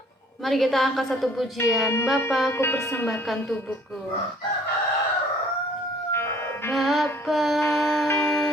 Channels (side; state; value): both; normal; correlation 0.56